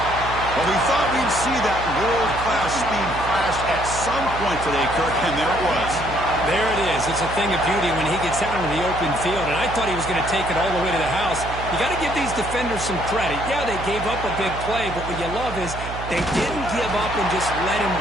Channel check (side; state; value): right; noise; hum, 9 dB below the sound